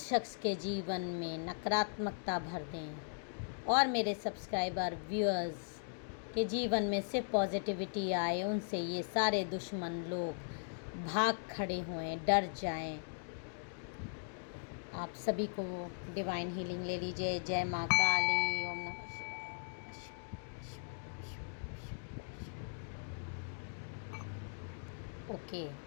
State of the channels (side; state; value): right; silent; digital silence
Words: शख्स के जीवन में नकारात्मकता भर दें और मेरे सब्सक्राइबर व्यूअर्स के जीवन में सिर्फ पॉजिटिविटी आए। उनसे ये सारे दुश्मन लोग भाग खड़े हुए, डर जाएं। आप सभी को डिवाइन हीलिंग ले लीजिए। जय माँ काली, ओम नमः शिवाय। ओके,